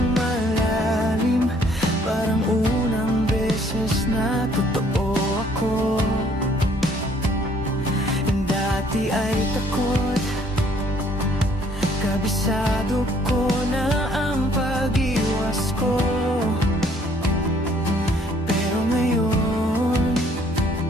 malalim, parang unang beses na totoo ako. Dati ay takot, kabisado ko na ang pag-iwas ko. Pero ngayon,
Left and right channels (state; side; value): normal; both; correlation 0.62